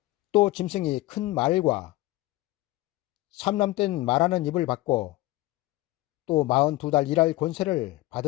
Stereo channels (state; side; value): quieter; right; 18.5 dB